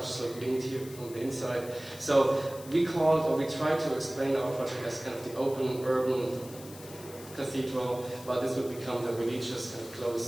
look linked here from the inside. So we tried to explain our project as kind of the open urban cathedral, but this would become the religious kind of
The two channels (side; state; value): left; noise; hiss, 17 dB below the sound